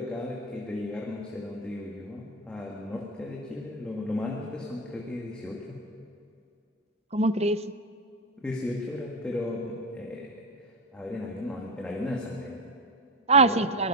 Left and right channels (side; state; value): both; normal; correlation 0.18